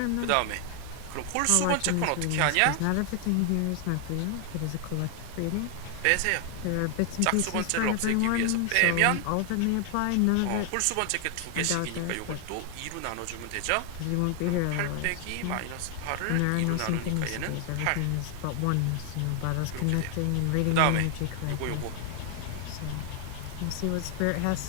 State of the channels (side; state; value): both; different; correlation 0.00